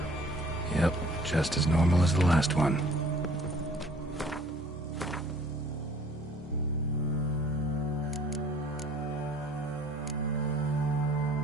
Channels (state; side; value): normal; both; correlation 0.54